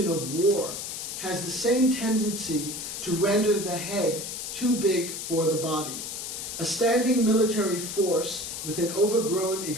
of war has the same tendency to render the head too big for the body. A standing military force with an overgrown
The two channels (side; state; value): left; noise; hiss, 6 dB below the sound